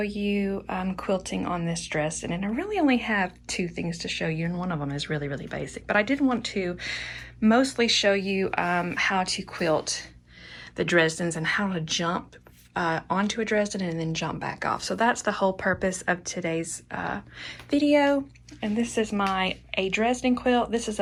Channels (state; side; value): identical; both; correlation 1.00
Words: you quilting on this dress, and I really only have two things to show you, and one of them is really basic. But I did want to mostly show you how to quilt the Dresdens and how to jump onto a Dresden and then jump back off. So that's the whole purpose of today's video. And this is a Dresden quilt. This is